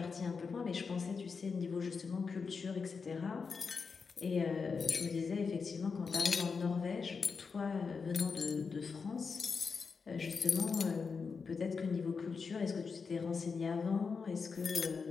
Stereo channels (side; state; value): right; quieter; 5.2 dB